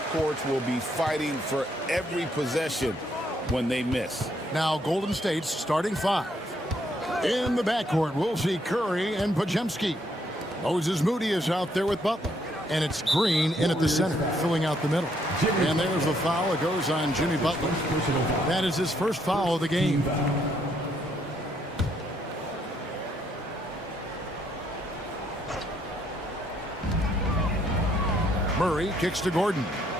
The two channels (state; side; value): normal; both; correlation 0.71